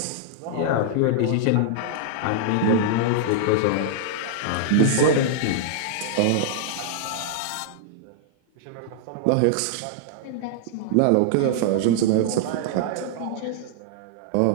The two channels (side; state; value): both; different; correlation -0.01